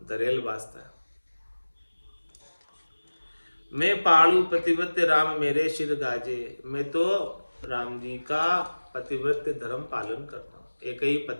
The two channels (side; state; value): both; inverted; correlation -1.00